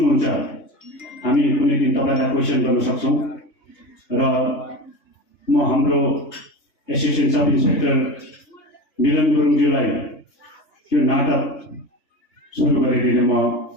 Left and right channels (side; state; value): right; late; 3.3 ms